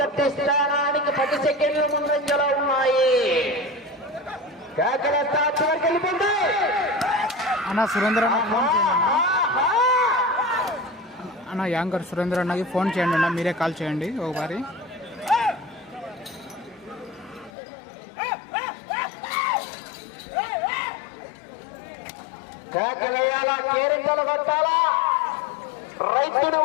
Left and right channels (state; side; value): drops out; right; at 17.5 s